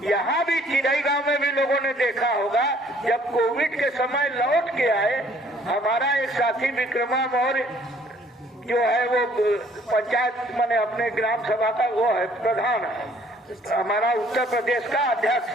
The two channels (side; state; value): both; normal; correlation 0.60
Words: यहाँ भी चिड़ई गांव में भी लोगों ने देखा होगा, जब कोविड के समय लौट के आए, हमारा एक साथी विक्रमा मौर्य जो है वो पंचायत माने अपने ग्राम सभा का वो है प्रधान है, हमारा उत्तर प्रदेश का अध्यक्ष